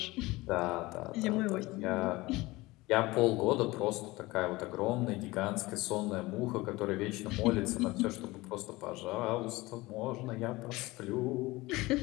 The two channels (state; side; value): quieter; right; 20.7 dB